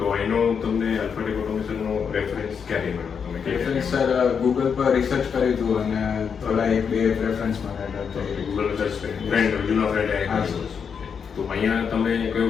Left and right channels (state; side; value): quieter; right; 6.7 dB